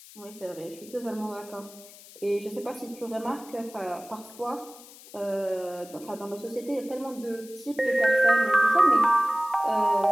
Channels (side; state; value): left; noise; hiss, 20 dB below the sound